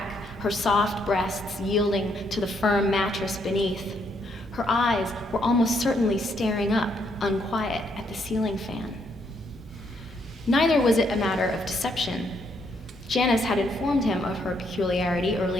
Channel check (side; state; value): both; normal; correlation 0.73